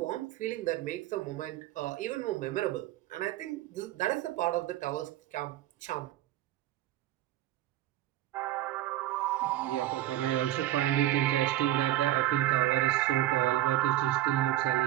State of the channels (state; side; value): quieter; left; 14.6 dB